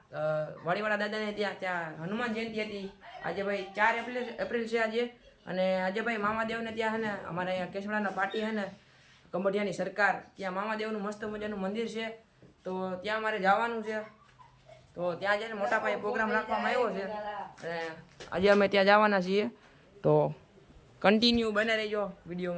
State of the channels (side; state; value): both; identical; correlation 1.00